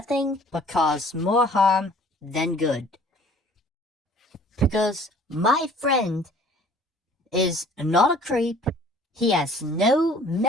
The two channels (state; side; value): normal; both; correlation 0.52